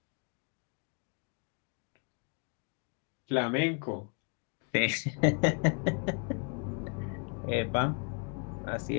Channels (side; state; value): right; quieter; 37.5 dB